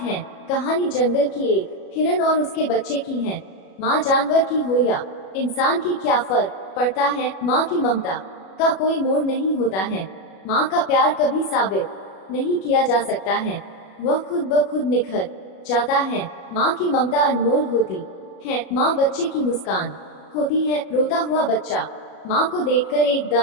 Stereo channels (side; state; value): right; late; 37 ms